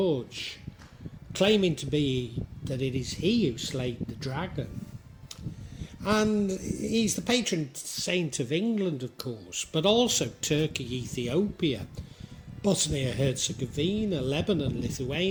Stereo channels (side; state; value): both; identical; correlation 1.00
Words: claiming to be that it is he who slayed the dragon. And he's the patron saint of England, of course, but also Turkey, Ethiopia, Bosnia-Herzegovina, Lebanon,